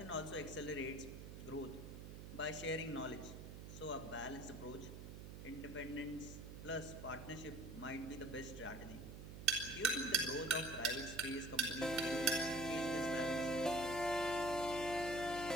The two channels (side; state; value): right; noise; hum, 10 dB below the sound